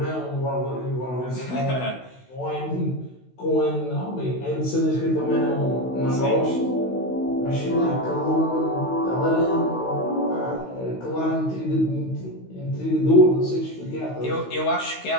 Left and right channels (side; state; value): right; late; 16 ms